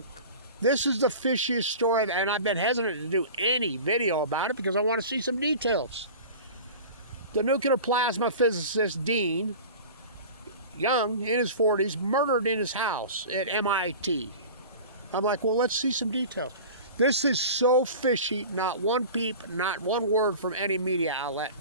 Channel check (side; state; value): both; inverted; correlation -0.36